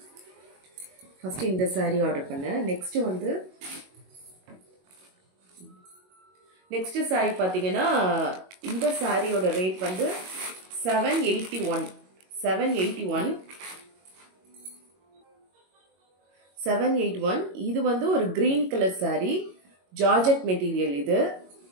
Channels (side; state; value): left; late; 22 ms